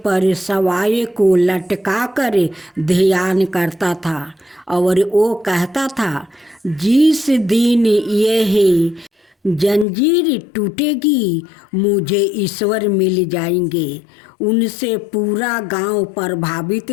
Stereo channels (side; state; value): right; drops out; at 9.9 s